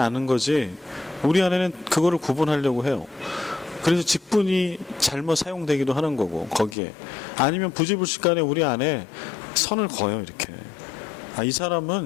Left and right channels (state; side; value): drops out; right; at 6.8 s